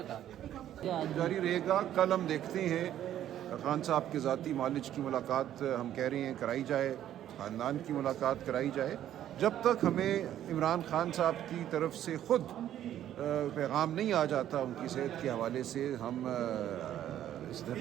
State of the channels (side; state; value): left; quieter; 11.5 dB